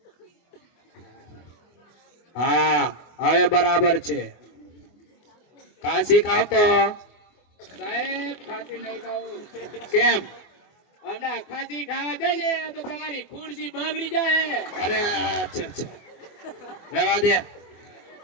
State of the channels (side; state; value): right; late; 24 ms